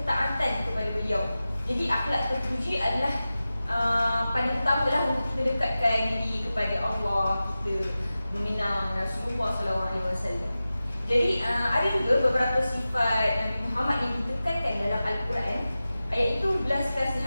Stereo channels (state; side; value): inverted; both; correlation -0.95